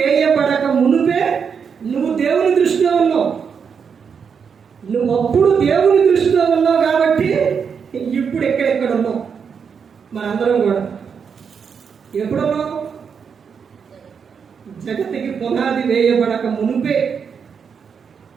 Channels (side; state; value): left; quieter; 6.5 dB